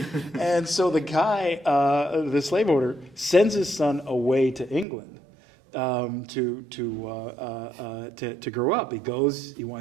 And so the guy, the slave owner, sends his son away to England to grow up. He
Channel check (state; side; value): drops out; left; at 4.9 s